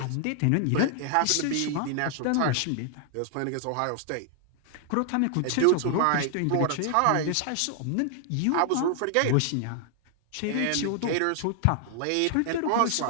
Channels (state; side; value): different; both; correlation 0.00